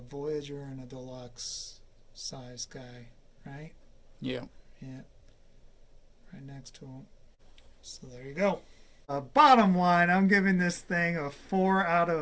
Voyager and a Deluxe size guy, right? Yeah. Yeah. Right next to him. So there you go. Bottom line, I'm giving this thing a 4 out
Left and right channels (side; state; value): both; identical; correlation 1.00